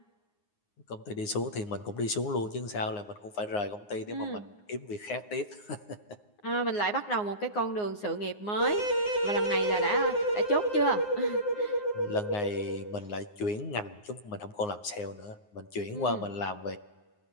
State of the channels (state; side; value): late; right; 9.6 ms